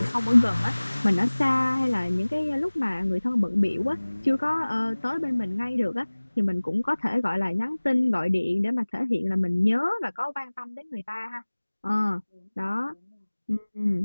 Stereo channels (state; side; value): inverted; both; correlation -1.00